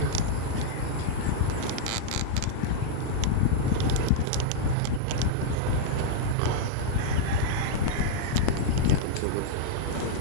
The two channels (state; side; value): different; both; correlation -0.02